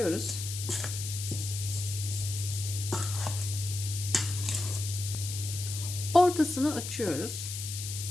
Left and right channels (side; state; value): left; noise; hiss, 6 dB below the sound